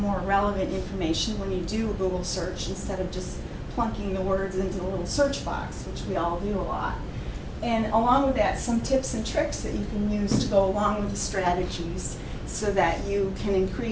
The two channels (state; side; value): identical; both; correlation 1.00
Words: more relevant information when you do a Google search instead of just plunking the words into the little search box, which we all do a lot. And along with that, some tips and tricks that you can use to go along with the strategies so that you can